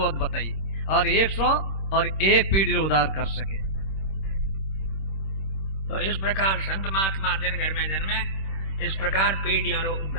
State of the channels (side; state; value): right; late; 26 ms